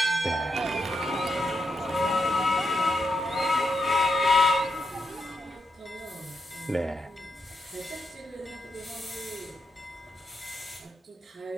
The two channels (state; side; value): normal; both; correlation 0.82